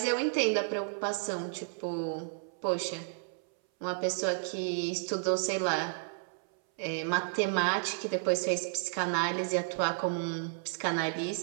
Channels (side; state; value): left; silent; 56 dB below the other